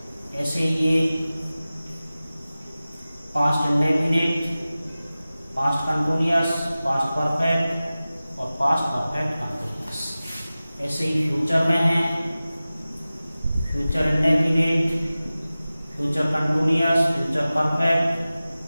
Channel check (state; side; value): inverted; both; correlation -0.97